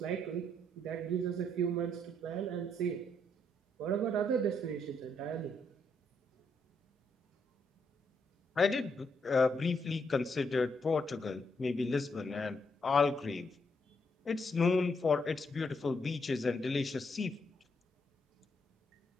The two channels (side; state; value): both; normal; correlation 0.76